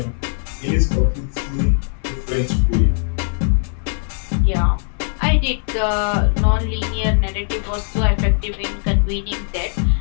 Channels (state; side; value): silent; right; digital silence